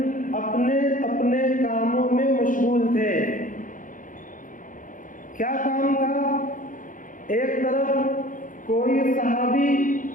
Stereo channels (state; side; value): late; right; 0.38 ms